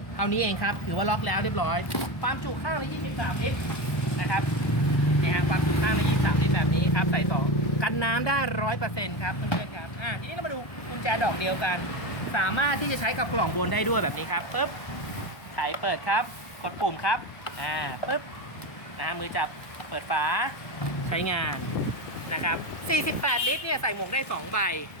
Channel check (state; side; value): late; right; 1.2 ms